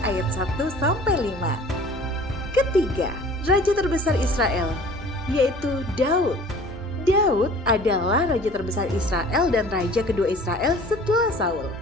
ayat 1 sampai 5. Ketiga, raja terbesar Israel, yaitu Daud. Daud adalah raja terbesar Israel dan raja kedua Israel setelah Saul.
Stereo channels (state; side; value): normal; both; correlation 0.47